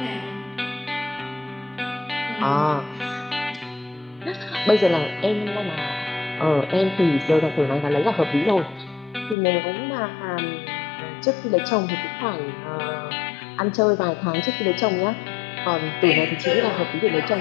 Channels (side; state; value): right; drops out; at 9.3 s